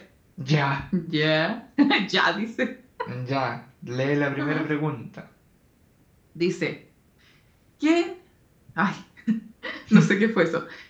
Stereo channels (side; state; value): both; identical; correlation 1.00